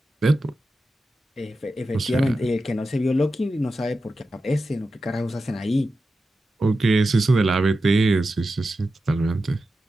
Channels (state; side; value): normal; both; correlation 0.91